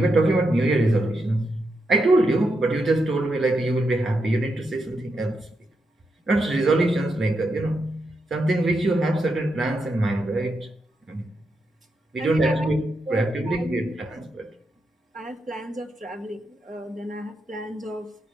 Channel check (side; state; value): both; normal; correlation 0.84